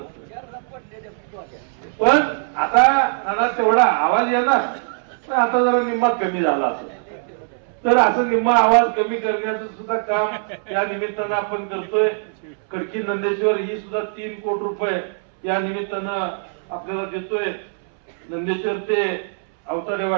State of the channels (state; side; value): silent; left; 65 dB below the other